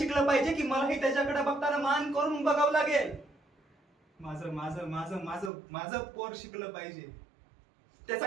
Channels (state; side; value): drops out; left; at 5.5 s